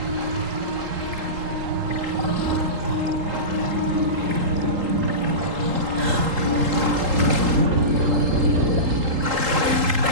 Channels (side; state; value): left; late; 3.8 ms